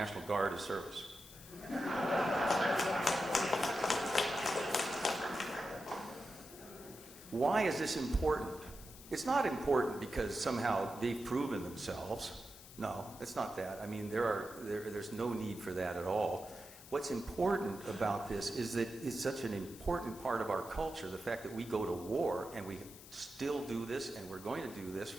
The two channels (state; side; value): noise; left; hiss, 17 dB below the sound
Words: Guard as service. Why is this important? It's not important because somehow they've proven themselves. No, it's not that. I mean, there's no need for that at all. What's important about this is that it's such an important part of our culture, the fact that we go to war and we still do this, and we're going to do this